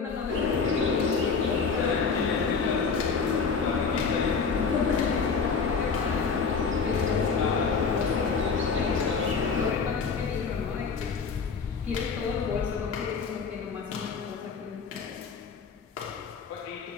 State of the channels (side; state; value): right; quieter; 5.3 dB